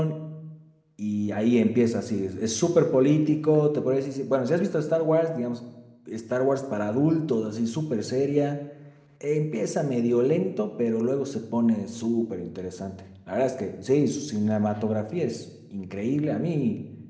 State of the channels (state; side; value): identical; both; correlation 1.00